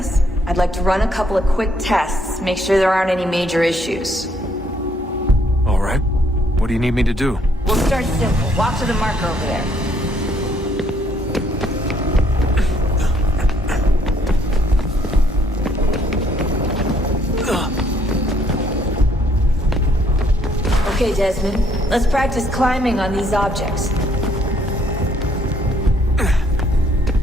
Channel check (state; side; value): normal; both; correlation 0.67